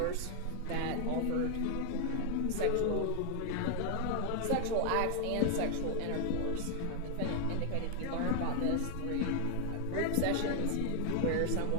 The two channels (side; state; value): both; different; correlation 0.00